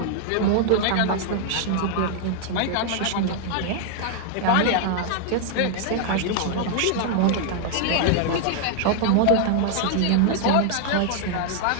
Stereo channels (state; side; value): different; both; correlation 0.00